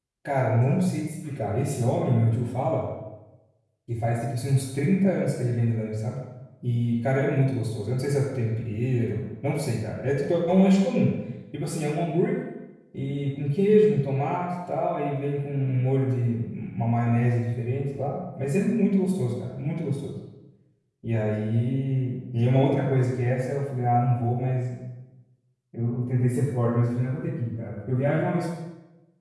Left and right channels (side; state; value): both; identical; correlation 1.00